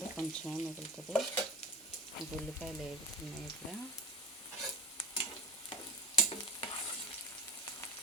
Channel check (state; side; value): normal; both; correlation 0.31